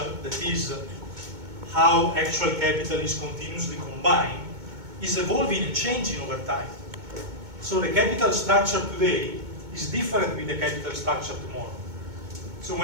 that is how actual capital is continuously combined, is evolving and changing over time. So the capital structure today is different with the capital structure tomorrow. So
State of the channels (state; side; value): late; left; 2.2 ms